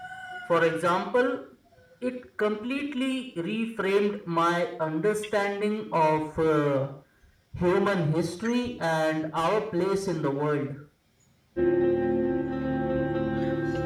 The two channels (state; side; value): identical; both; correlation 1.00